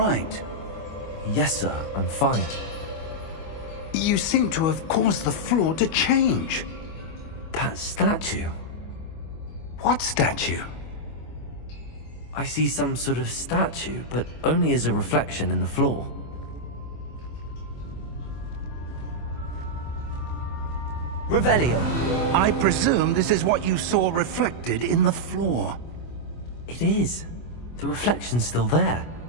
Yes, sir, I'm fine. You seem to have caused the floor to change. That statue. What statue? I see some sort of statue, but only as a reflection in the floor. Revelio. I presume this is what you saw reflected in the floor. It is. The reflection's still there,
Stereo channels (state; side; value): late; right; 25 ms